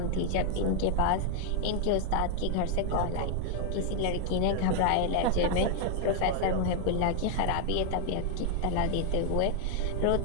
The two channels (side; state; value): both; different; correlation 0.00